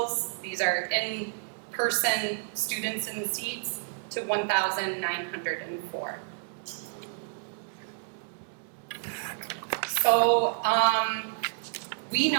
these are in-person students in seats, to 1,904. So we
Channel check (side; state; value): left; silent; digital silence